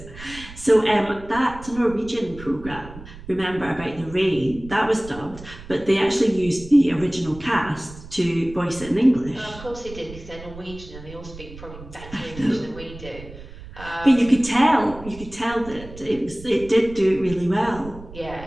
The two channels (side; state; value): right; noise; rumble, 16 dB below the sound